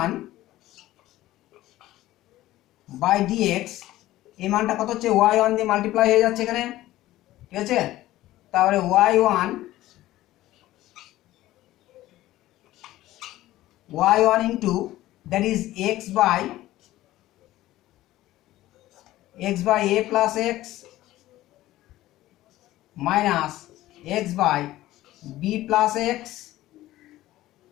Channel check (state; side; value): quieter; right; 15.7 dB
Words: by d x এই মানটা কত হচ্ছে, ওয়াই ওয়ান দিয়ে মাল্টিপ্লাই হয়ে যাচ্ছে এখানে, ঠিক আছে। তারপরে y one into that is x by a plus x minus x by B plus x